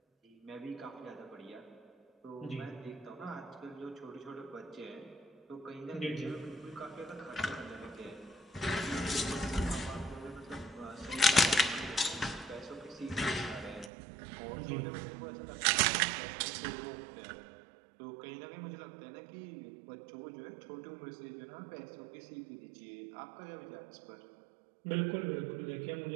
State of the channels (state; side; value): drops out; left; at 13.9 s